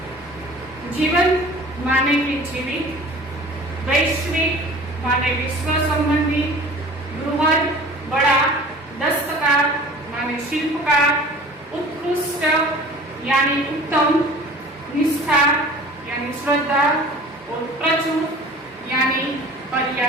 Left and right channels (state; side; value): normal; both; correlation 0.44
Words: जीवन माने कि जीवित, वैश्विक माने विश्व संबंधी, बृहद बड़ा, दस्तकार माने शिल्पकार, उत्कृष्ट यानी उत्तम, निष्ठा यानी श्रद्धा, और प्रचुर यानी